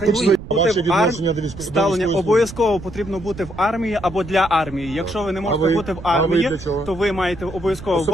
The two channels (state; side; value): noise; right; rumble, 14 dB below the sound